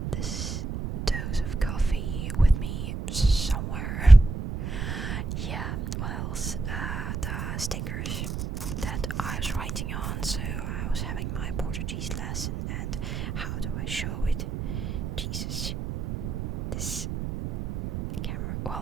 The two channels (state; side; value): noise; right; rumble, 4 dB below the sound